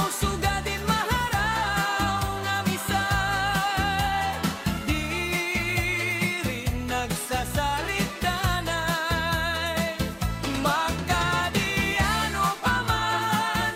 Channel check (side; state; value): both; identical; correlation 1.00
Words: sugadin maharaw nga misay, di rin nagsasalit-danay. Magkadiano pa man,